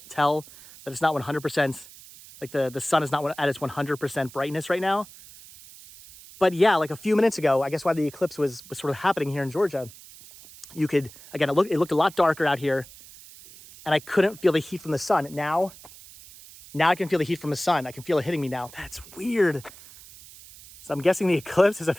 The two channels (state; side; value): noise; right; hiss, 19 dB below the sound